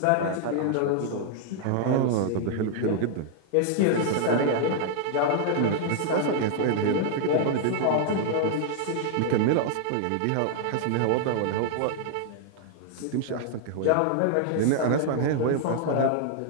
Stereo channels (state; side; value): different; both; correlation 0.00